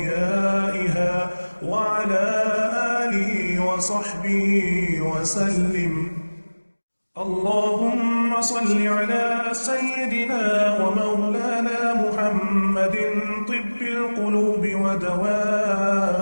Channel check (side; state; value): both; inverted; correlation -1.00